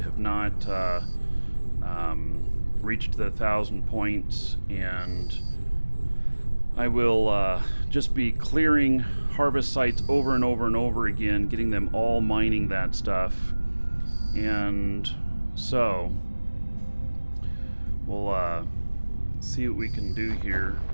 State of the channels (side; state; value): both; inverted; correlation -1.00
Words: have not reached the 1,000 points, and I will just be clearing harvest sites over and over and over again, getting them all mining that stuff. And so we'll see what we can do here.